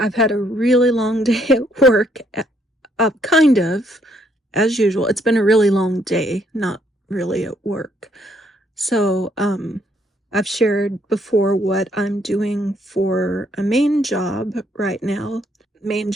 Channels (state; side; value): normal; both; correlation 0.69